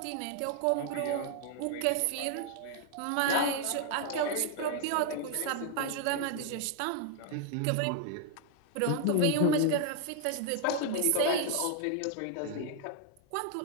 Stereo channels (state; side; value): different; both; correlation 0.00